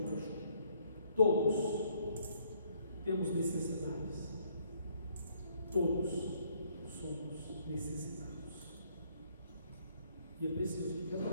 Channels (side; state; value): both; inverted; correlation -0.67